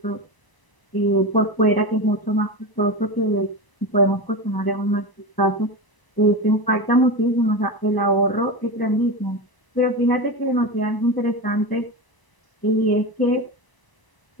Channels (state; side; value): late; right; 1.0 ms